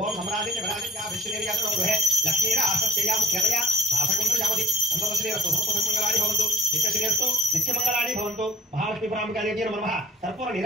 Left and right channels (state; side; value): normal; both; correlation 0.54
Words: ఓం సమరాజించ విరాజించ విష్ణుదేవ్యాతో గృహే లక్ష్మీర ఆసస్యయా ముఖ్యతయా శాసకుంత్ర యావతి సంతోషశ్రీరస్తు సమస్తమంగళాని భవంతు నిత్యశ్రీరస్తు నిత్యమంగళాని భవంతు. మహాలక్ష్మీ పరాంబికాదేవ్యై నమః. కర్పూర